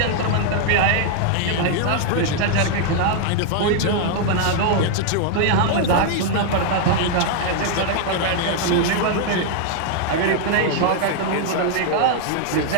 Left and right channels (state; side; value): different; both; correlation 0.00